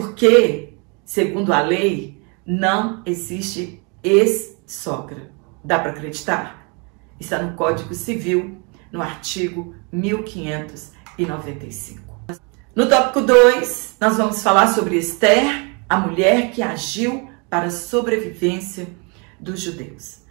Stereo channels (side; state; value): left; quieter; 32.7 dB